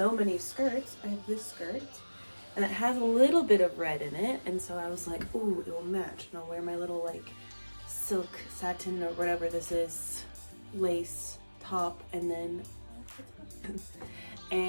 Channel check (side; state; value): both; inverted; correlation -1.00